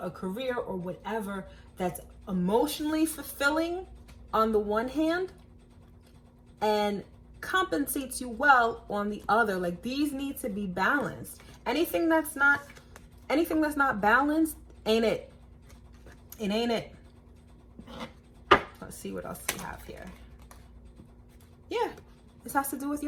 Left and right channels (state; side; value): identical; both; correlation 1.00